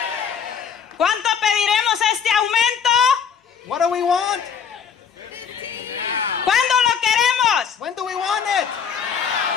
¿Cuánto pediremos este aumento? What do we want? ¿Cuándo lo queremos? When do we want it?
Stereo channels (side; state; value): right; quieter; 7.2 dB